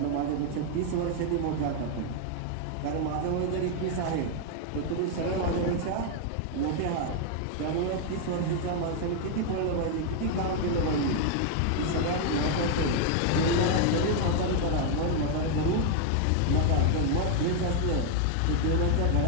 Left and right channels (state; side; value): different; both; correlation 0.00